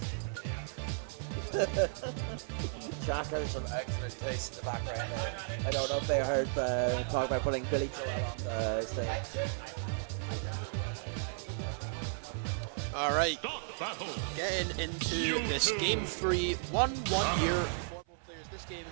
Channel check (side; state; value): left; silent; 55 dB below the other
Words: Jack has some excellent taste in the background there. I don't know if they heard talk about putting Billy Joel on the stage. All right, getting into this game 3, 1 year for both players. This game,